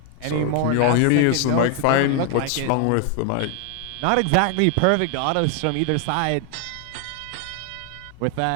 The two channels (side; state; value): both; different; correlation 0.00